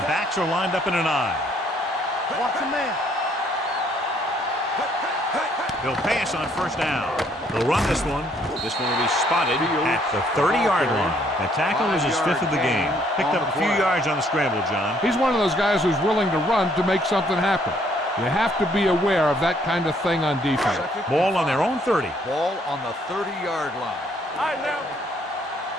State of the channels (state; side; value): normal; both; correlation 0.66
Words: backs are lined up in an I. Watch the man. They'll pass on 1st down. They'll run this one. This one will be spotted at the 30-yard line. That tackle is his 5th of the game. Picked up a few yards on the scramble, John. He's one of those guys who's willing to run to make something happen. You have to be aware of that kind of thing on defense. Ball on their own 30. Ball on the 30-yard line. All right, now.